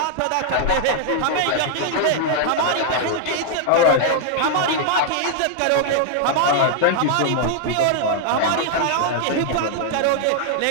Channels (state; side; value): different; both; correlation -0.01